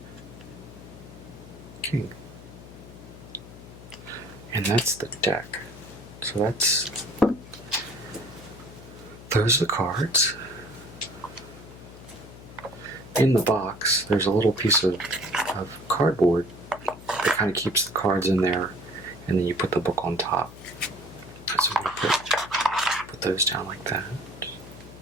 King. And that's the deck. So those are the cards. In the box, there's a little piece of cardboard that kind of keeps the cards in there, and then you put the book on top. So I'm going to put those down like that.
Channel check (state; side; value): noise; left; hum, 17 dB below the sound